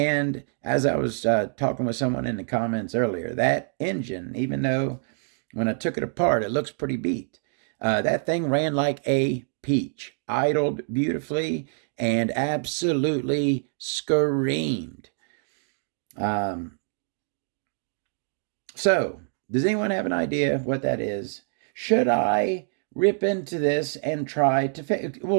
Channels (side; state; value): left; silent; digital silence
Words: as I was talking with someone in the comments earlier, that engine, even though when I took it apart, it looks pretty beat, that thing ran like a peach, idled beautifully, and absolutely screamed. So, does anyone have an idea what that is? Should I rip into this and try to fix it?